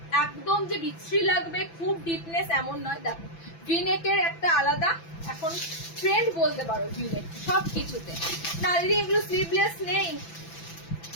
একদম যে বিচ্ছিরি লাগবে খুব ডিপনেস এমন নয়। দেখো ভি নেকের একটা আলাদা এখন ট্রেন্ড বলতে পারো ভি নেক সব কিছুতে। না দিদি এগুলো স্লিভলেস নেই,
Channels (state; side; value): late; right; 6.0 ms